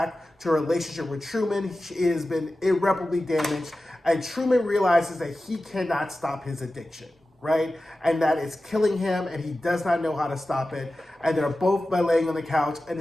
to a relationship with Truman. She has been irreparably damaged. And Truman realizes that he cannot stop his addiction, right? And that it's killing him, and he does not know how to stop it. And they're both laying on the couch, and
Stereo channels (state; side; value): normal; both; correlation 0.94